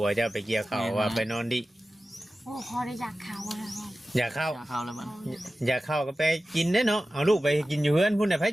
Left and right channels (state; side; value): normal; both; correlation 0.95